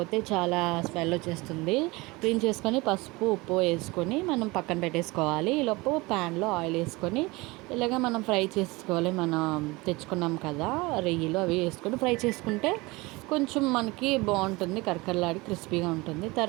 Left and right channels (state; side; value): quieter; left; 23.2 dB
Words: చాలా స్మెల్ వచ్చేస్తుంది. క్లీన్ చేసుకొని పసుపు ఉప్పు వేసుకొని మనం పక్కన పెట్టేసుకోవాలి. ఈలోపు ప్యాన్లో ఆయిల్ వేసుకొని ఇలాగ మనం ఫ్రై చేసుకోవాలి. మనం తెచ్చుకున్నాం కదా రొయ్యలు, అవి వేసుకొని ఫ్రై చేసుకుంటే కొంచెం మనకి బాగుంటుంది, కరకరలాడి క్రిస్పీగా ఉంటుంది.